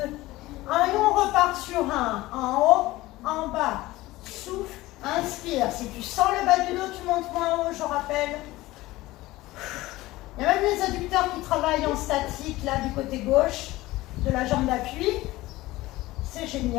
1. Et on repart sur 1. En haut, en bas. Souffle, inspire. Si tu sens le bas du dos, tu montes moins haut, je rappelle. Il y a même les adducteurs qui travaillent en statique, là, du côté gauche de la jambe d'appui. C'est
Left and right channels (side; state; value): right; quieter; 18.4 dB